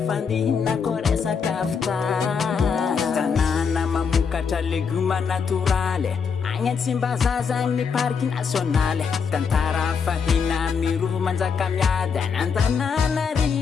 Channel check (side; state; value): right; quieter; 6.0 dB